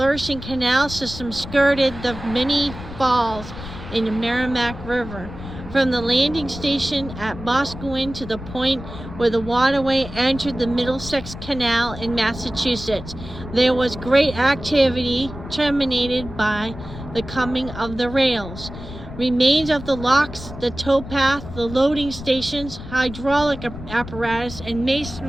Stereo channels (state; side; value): noise; left; rumble, 12 dB below the sound